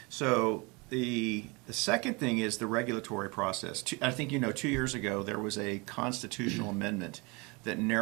So the second thing is the regulatory process. I think 2 years ago there was a constitutional amendment that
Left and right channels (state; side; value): quieter; left; 27.6 dB